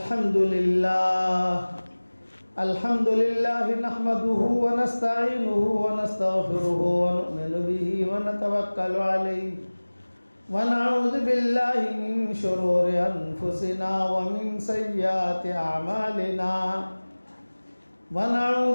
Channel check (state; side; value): inverted; both; correlation -1.00